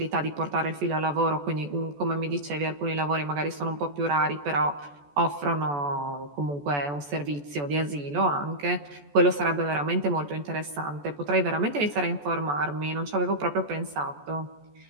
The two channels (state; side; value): late; left; 14 ms